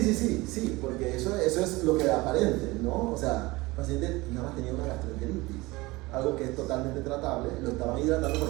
porque eso es lo que aparente, ¿no? O sea, el paciente nada más tenía una gastroenteritis, algo que es totalmente tratable, lo estaban hidratando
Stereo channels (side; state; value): left; quieter; 21.6 dB